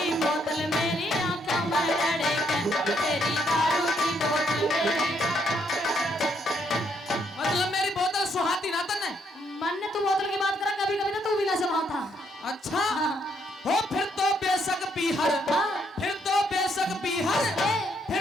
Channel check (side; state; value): both; normal; correlation 0.73